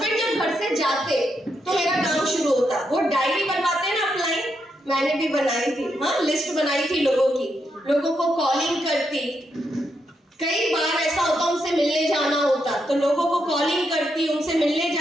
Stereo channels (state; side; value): normal; both; correlation 0.81